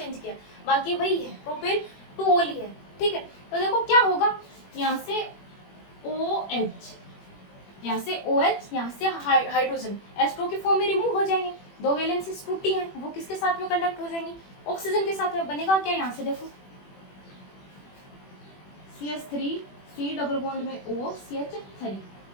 किया, बाकी वही है, प्रोपेन 2 ओल ही है, ठीक है। तो देखो क्या होगा, यहाँ से OH, यहाँ से OH, यहाँ से हाइड्रोजन H2 की फॉर्म में रिमूव हो जाएंगे, दो वैलेंसीज टूटी हैं, वो किसके साथ में कंडक्ट हो जाएंगी, ऑक्सीजन के साथ में। बनेगा क्या, यहाँ से देखो CH3 C डबल बॉन्ड में O CH3,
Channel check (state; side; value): late; right; 21 ms